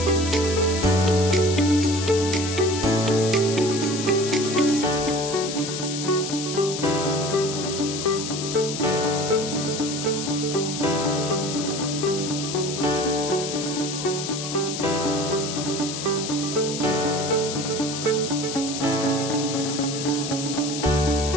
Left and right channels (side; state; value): left; noise; hiss, 6 dB below the sound